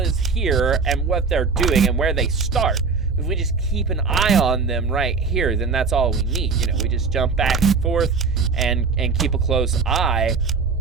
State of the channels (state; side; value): quieter; left; 4.8 dB